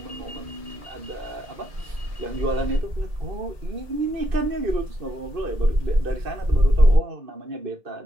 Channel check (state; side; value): late; left; 2.6 ms